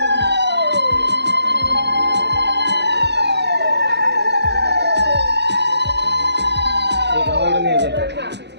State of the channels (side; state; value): left; late; 0.50 ms